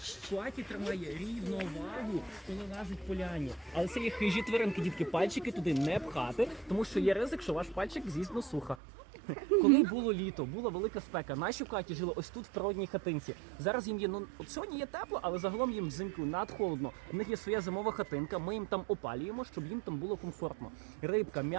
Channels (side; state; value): left; drops out; at 8.8 s